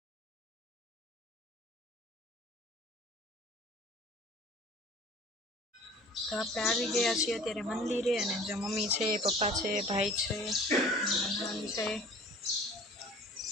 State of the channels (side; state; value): both; normal; correlation 0.47